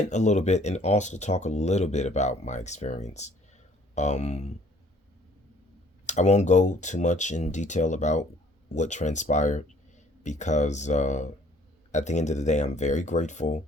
a little bit and also talk a little bit about my experience. Um, I won't go too much in detail about what transpired because at the end of the day, I'm very grateful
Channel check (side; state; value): both; normal; correlation 0.58